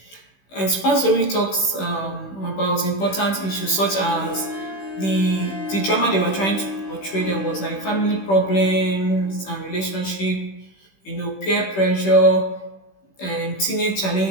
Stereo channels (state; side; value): late; right; 16 ms